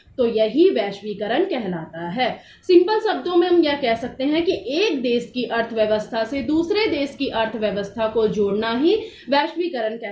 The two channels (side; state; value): both; identical; correlation 1.00